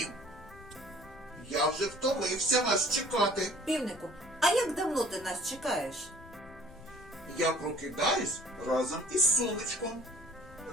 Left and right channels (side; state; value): left; noise; rumble, 20 dB below the sound